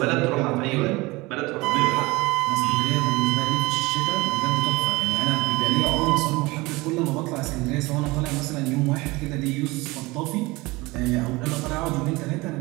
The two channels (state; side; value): quieter; left; 22.4 dB